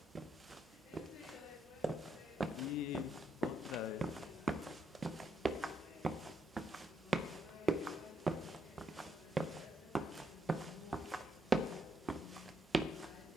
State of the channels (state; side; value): normal; both; correlation 0.77